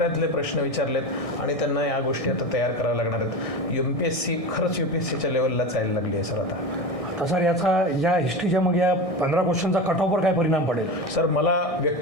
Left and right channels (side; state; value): right; late; 1.6 ms